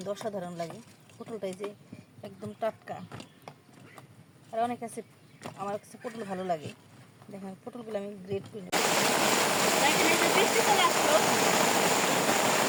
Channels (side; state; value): both; identical; correlation 1.00